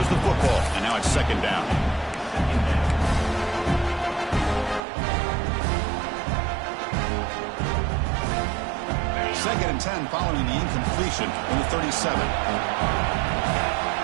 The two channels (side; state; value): left; drops out; at 4.8 s